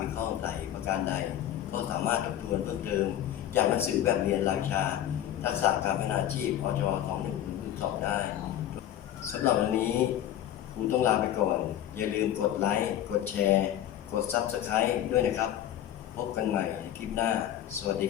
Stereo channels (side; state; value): right; quieter; 11.7 dB